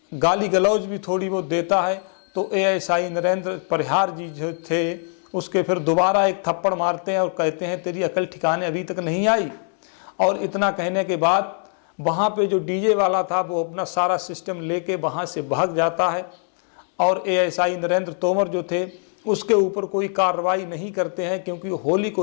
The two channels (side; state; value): right; silent; 56 dB below the other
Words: गाली गलौज भी थोड़ी बहुत देता है। तो एएसआई नरेंद्र परिहार जी जो थे उसके फिर दोबारा एक थप्पड़ मारते हैं और कहते हैं, तेरी अकल ठिकाने अभी तक नहीं आई। और इतना कहने के बाद वहाँ पे जो डीजे वाला था वो अपना सारा सिस्टम लेके वहाँ से भाग जाता है। और एएसआई नरेंद्र तोमर जो थे उसके ऊपर कोई कार्रवाई नहीं करते हैं, क्योंकि होली